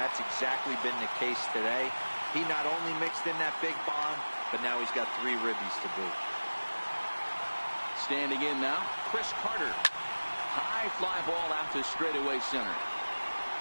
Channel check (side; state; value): both; inverted; correlation -1.00